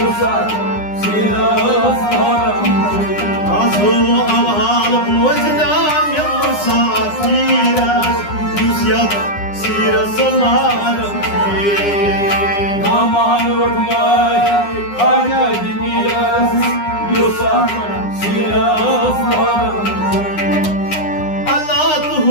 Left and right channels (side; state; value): right; late; 9.8 ms